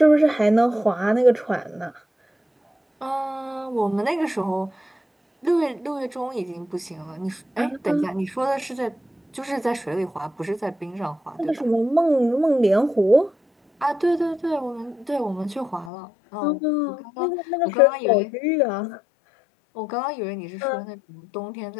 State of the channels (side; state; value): right; drops out; at 15.9 s